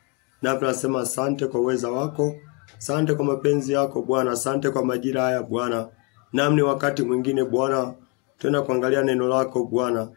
Na tunasema asante kwa uweza wako, asante kwa mapenzi yako Bwana, asante kwa majira haya Bwana. Namni wakati mwingine Bwana tena kuangalia neno lako Bwana,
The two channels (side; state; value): right; quieter; 30.4 dB